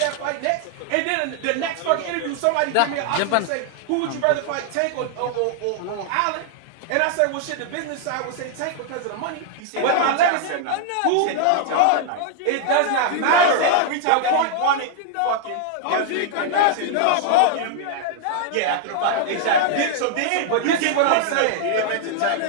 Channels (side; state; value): both; different; correlation -0.01